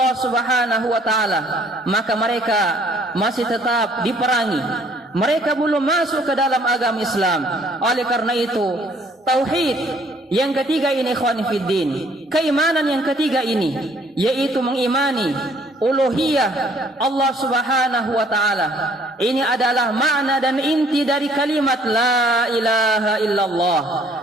Subhanahu wa taala, maka mereka masih tetap diperangi. Mereka belum masuk ke dalam agama Islam. Oleh karena itu, tauhid yang ketiga ini, ikhwan fiddin, keimanan yang ketiga ini, yaitu mengimani uluhiyah Allah Subhanahu wa taala. Ini adalah makna dan inti dari kalimat la ilaha illallah,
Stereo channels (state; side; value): normal; both; correlation 0.61